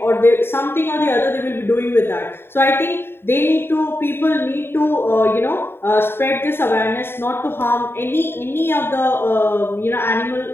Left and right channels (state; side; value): late; right; 0.11 ms